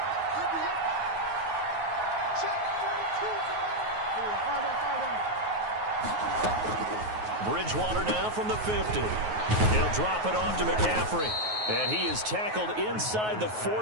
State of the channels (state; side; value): late; left; 9.4 ms